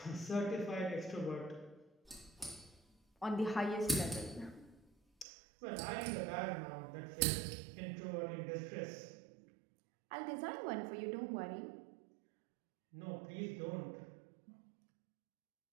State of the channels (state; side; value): drops out; left; at 5.2 s